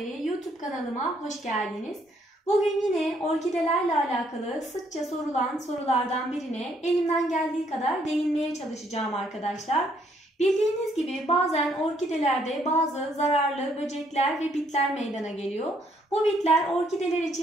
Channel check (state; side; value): normal; both; correlation 0.69